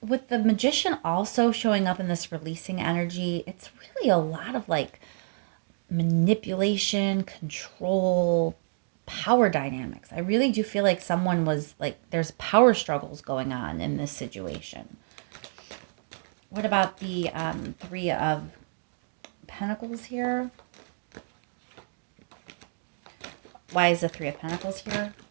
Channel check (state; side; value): silent; left; digital silence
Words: With the Magician also showing up in this releasing energy, it's really a lot of like manipulation, control, power dynamics. I really do feel like someone was like, there's power struggles going on in this situation. What about the Three of Pentacles here? Why is the Three of Pentacles here